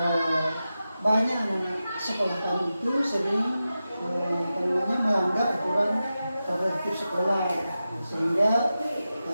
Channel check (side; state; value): both; inverted; correlation -0.92